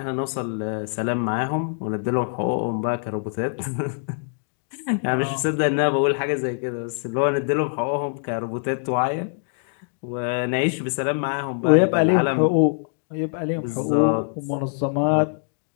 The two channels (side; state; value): right; silent; digital silence